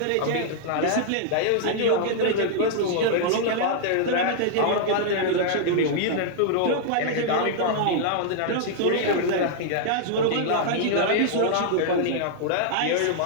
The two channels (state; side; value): different; both; correlation -0.01